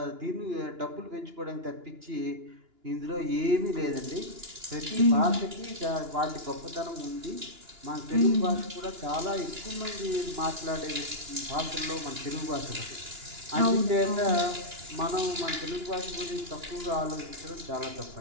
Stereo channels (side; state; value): left; late; 2.9 ms